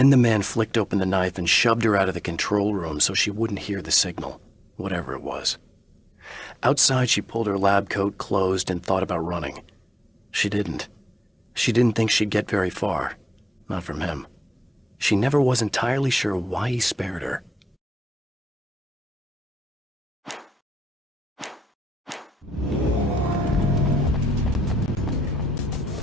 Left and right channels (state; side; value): normal; both; correlation 0.87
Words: the man flicked open the knife and shoved her out of the control room so she wouldn't hear the signal, whatever it was. Outside, she pulled her lab coat closed and thought about running. She didn't. She didn't think she'd get very far. Not from him. She never was entirely sure why he spared her.